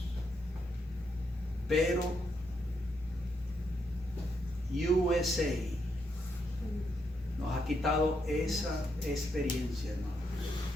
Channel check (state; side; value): normal; both; correlation 0.79